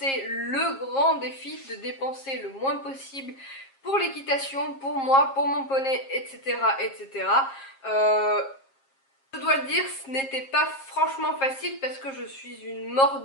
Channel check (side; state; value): right; late; 7.4 ms